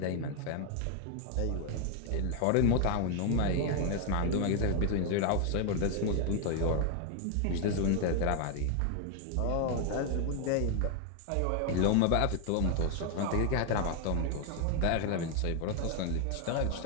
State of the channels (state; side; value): different; both; correlation 0.01